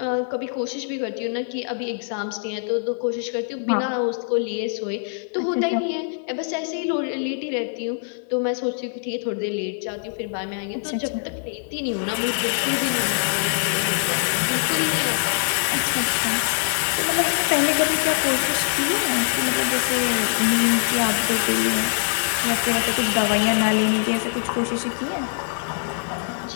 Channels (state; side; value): silent; right; digital silence